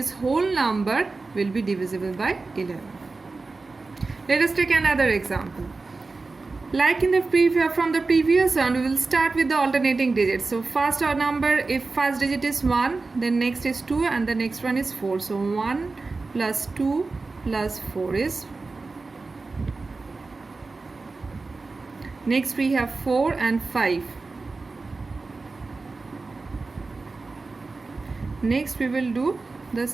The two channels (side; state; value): left; quieter; 3.8 dB